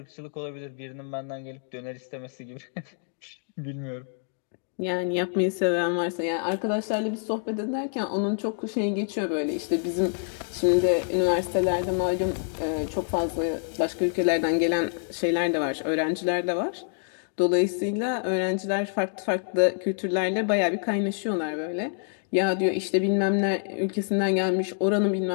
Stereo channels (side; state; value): right; silent; 60 dB below the other